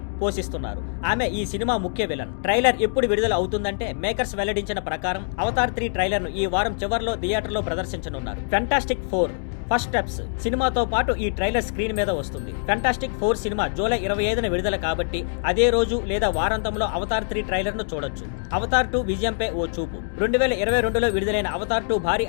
పోషిస్తున్నారు. ఆమె ఈ సినిమా ముఖ్య విలన్. ట్రైలర్ ఎప్పుడు విడుదల అవుతుందంటే మేకర్స్ వెల్లడించిన ప్రకారం అవతార్ 3 ట్రైలర్ ను ఈ వారం చివర్లో థియేటర్లో ప్రదర్శించనున్నారు. ఫెంటాస్టిక్ 4 ఫస్ట్ స్టెప్స్ సినిమాతో పాటు ఈ ట్రైలర్ స్క్రీన్ మీద వస్తుంది. ఫెంటాస్టిక్ 4 సినిమా జూలై 25న విడుదల కాబట్టి అదే రోజు లేదా వారాంతంలో అవతార్ 3 ట్రైలర్ ను చూడొచ్చు. అవతార్ 2 విజయంపై ఓ చూపు. 2022లో విడుదలైన అవతార్ 2 భారీ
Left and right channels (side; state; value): right; silent; digital silence